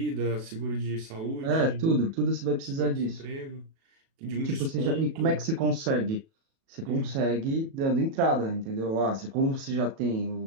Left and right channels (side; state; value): left; late; 37 ms